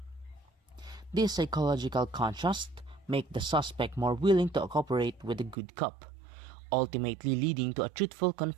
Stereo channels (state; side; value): drops out; left; at 5.6 s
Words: This psychological contrast make the suspect more willing to cooperate with the good cop, ultimately leading to a truthful